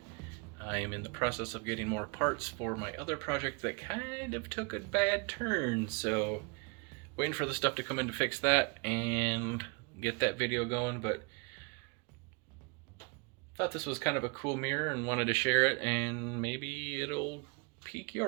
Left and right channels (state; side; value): quieter; left; 32.2 dB